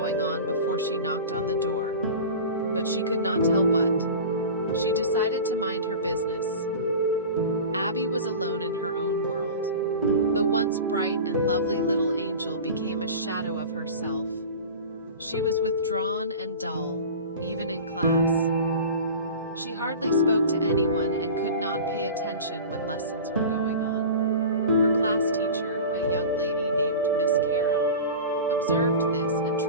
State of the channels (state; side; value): inverted; both; correlation -0.34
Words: on before she knocked on the door, but she could not tell what. She decided to mind her business. Abby was alone in her own world. The once bright and lovely little angel became a shadow of herself. She was withdrawn and dull, even in class. She hardly spoke to anyone and could not pay attention when lessons were going on. Her class teacher, a young lady named Miss Caro, observed this and